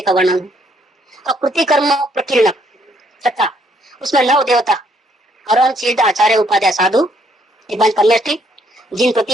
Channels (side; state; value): both; normal; correlation 0.69